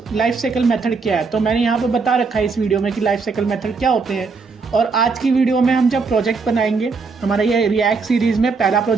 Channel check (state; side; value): quieter; left; 4.6 dB